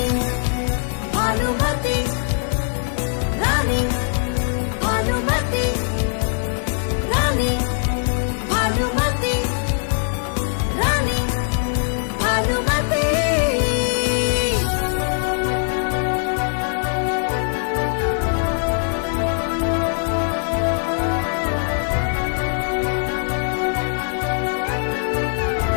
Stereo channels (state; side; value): silent; right; 64 dB below the other